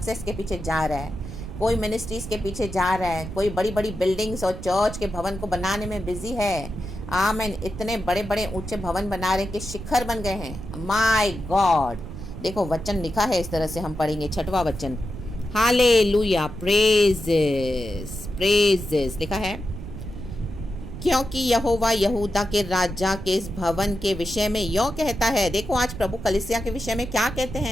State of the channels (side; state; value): right; noise; rumble, 10 dB below the sound